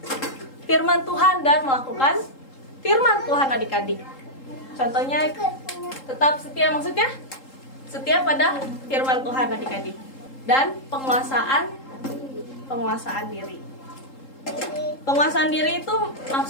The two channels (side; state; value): right; late; 3.8 ms